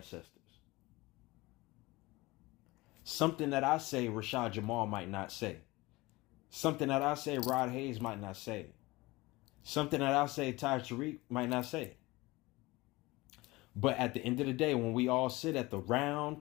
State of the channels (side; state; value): right; quieter; 21.3 dB